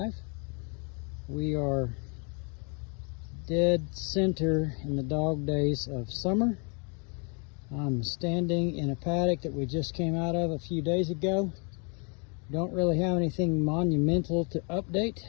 We are dead center in the dog days of summer. I'm standing in a paddock that we just came out of a few days ago. Don't really have anything monumental to update,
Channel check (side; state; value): right; quieter; 36.4 dB